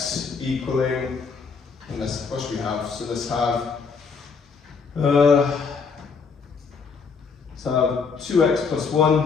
equaling, and what should we have? So let's have 2x plus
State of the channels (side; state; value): right; quieter; 5.3 dB